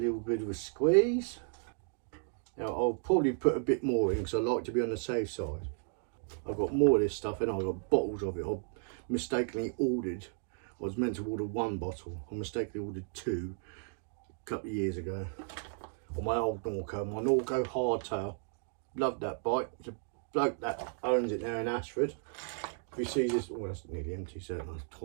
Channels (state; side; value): silent; left; 55 dB below the other